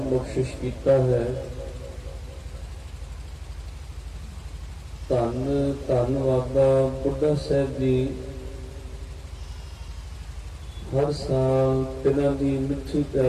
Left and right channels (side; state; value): both; identical; correlation 1.00